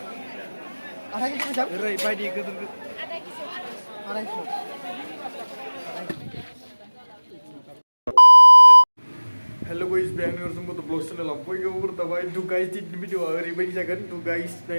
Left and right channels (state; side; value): inverted; both; correlation -1.00